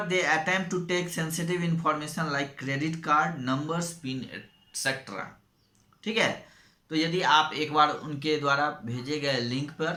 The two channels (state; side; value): identical; both; correlation 1.00